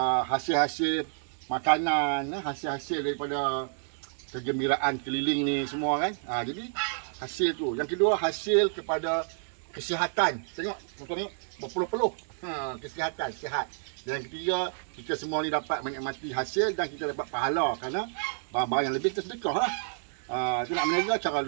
hasil-hasil makanan, hasil-hasil daripada kegembiraan keliling ni semua kan. Jadi hasil tu. Yang kedua, hasil kepada kesihatan. Tengok, tengok berpeluh-peluh. Kesihatan, sihat. Dan yang ketiga, kita semua ni dapat menikmati hasil dan kita dapat pahala kerana barang-barang yang lebih kita sedekah lah. Itu nak meniaga cara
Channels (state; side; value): silent; left; digital silence